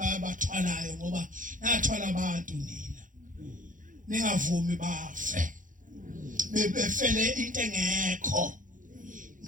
ngoba nathwala abantu nina. Ningavumi bafe. Befele into engekho.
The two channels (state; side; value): late; left; 0.38 ms